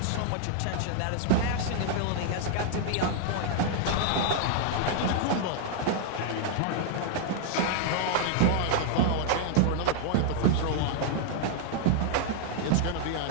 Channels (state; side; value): different; both; correlation 0.00